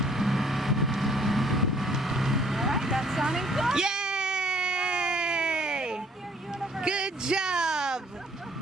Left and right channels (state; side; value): normal; both; correlation 0.60